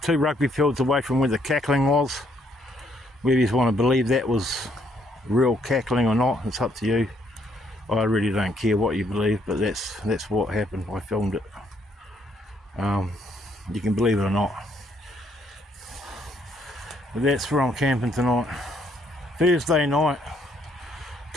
2 rugby fields away from where the cackling was. Whether you want to believe that was real cackling or not, it's up to you. I really don't care what you believe, but that's what happened. I filmed it. You can believe it or not. But that's where I'm camping tonight. Thursday night,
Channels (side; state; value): both; normal; correlation 0.70